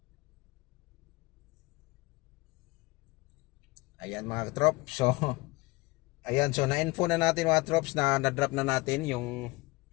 Ayan mga katrops. So ayan, so na-info na natin mga trops na na-drop na natin yung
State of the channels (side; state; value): right; quieter; 23.0 dB